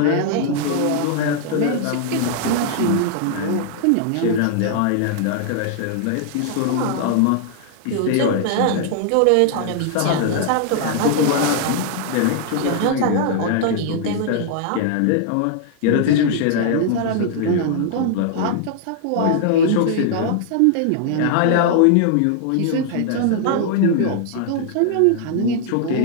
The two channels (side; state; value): both; different; correlation -0.01